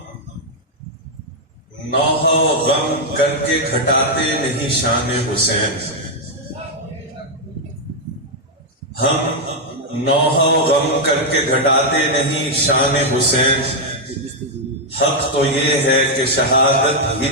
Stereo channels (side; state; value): both; normal; correlation -0.02